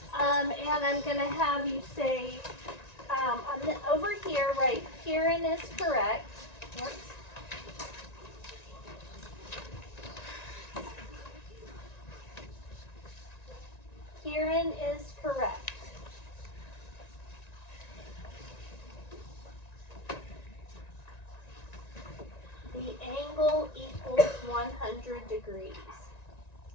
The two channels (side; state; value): right; late; 1.9 ms